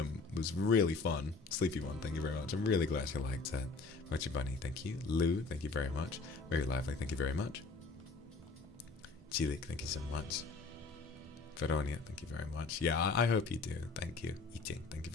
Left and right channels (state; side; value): quieter; right; 4.1 dB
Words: was really fun. Sleepy one, thank you very much. I'm really glad you liked it. Mochi Bunny, thank you. Lou, thank you very much. Very lively, thank you very much. Chilik, thank you so much. Veronia, thank you very much. Yeah, I hope you do. Thank you. Eating, thank you